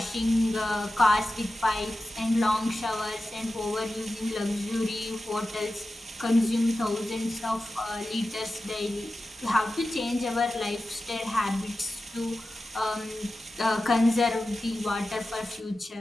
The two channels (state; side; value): normal; both; correlation 0.93